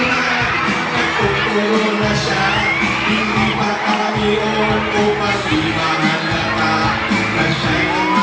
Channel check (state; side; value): identical; both; correlation 1.00